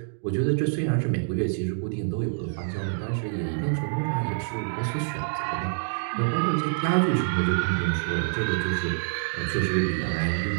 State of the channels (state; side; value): silent; left; digital silence